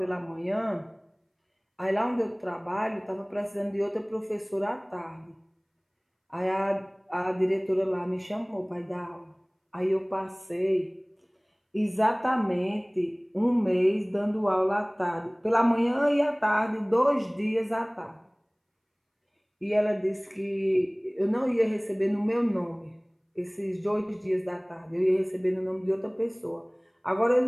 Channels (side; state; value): both; identical; correlation 1.00